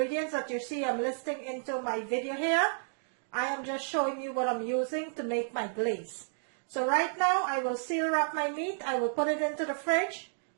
that you see I'm listing into my video here. I am just showing you what I'm using to make my glaze. So right now, I will seal wrap my meat. I will put it into the fridge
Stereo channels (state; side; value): silent; left; digital silence